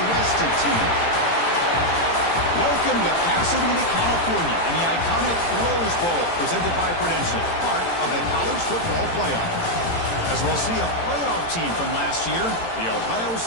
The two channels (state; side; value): late; right; 18 ms